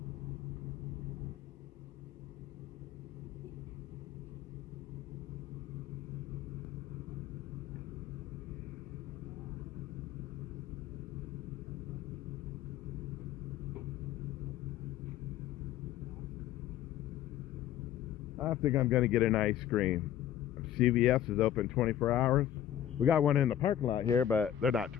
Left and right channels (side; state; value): right; quieter; 11.0 dB